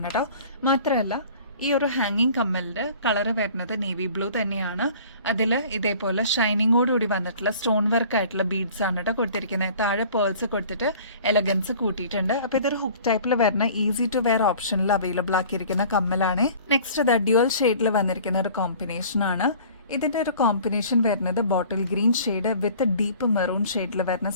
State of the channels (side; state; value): both; inverted; correlation -0.48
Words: കേട്ടോ. മാത്രമല്ല ഈ ഒരു ഹാങ്ങിങ് കമ്മലിന്റെ കളറ് വരുന്നത് നേവി ബ്ലൂ തന്നെയാണ്. അതിൽ ഇതേപോലെ ഷൈനിങ്ങോടുകൂടി വന്നിട്ടുള്ള സ്റ്റോൺ വർക്ക് ആയിട്ടുള്ള ബീഡ്സ് ആണ് കേട്ടോ കൊടുത്തിരിക്കുന്നത്. താഴെ പേൾസ് കൊടുത്തിട്ട് എലഗൻസ് കൂട്ടിയിട്ടുണ്ട്. അപ്പൊ ഇതൊരു ഹുക്ക് ടൈപ്പിൽ വരുന്ന ഈസി ടു വെയർ ഓപ്ഷനിൽ അവൈലബിൾ ആക്കിയിരിക്കുന്ന കമ്മലാണ്. നെക്സ്റ്റ് ഡ്യുവൽ ഷെയ്ഡിൽ വന്നിരിക്കുന്ന ഒരു കോമ്പിനേഷൻ ആണ്. ഇതിന്റെ ഒരു കോമ്പിനേഷൻ വരുന്നത് ബോട്ടിൽ ഗ്രീൻ ഷെയ്ഡ് വിത്ത് ഡീപ്പ് മെറൂൺ ഷെയ്ഡിൽ വരുന്ന